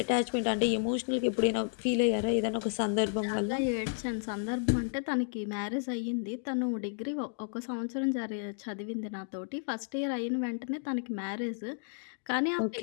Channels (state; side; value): silent; right; digital silence